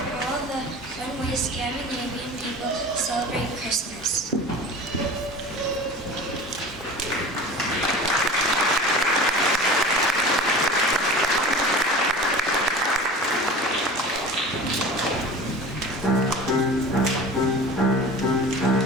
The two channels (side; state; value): both; normal; correlation 0.37